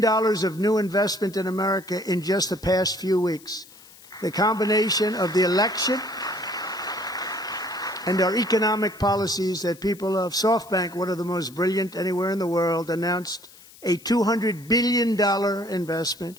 of new investment in America in just the past few weeks. The combination of the election and our economic policies that people of SoftBank, one of the most brilliant anywhere in the world, announced a $200 billion investment.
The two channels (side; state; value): left; noise; hiss, 22 dB below the sound